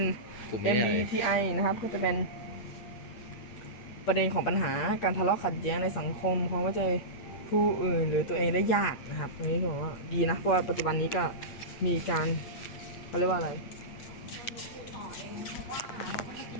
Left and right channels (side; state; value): right; late; 8.6 ms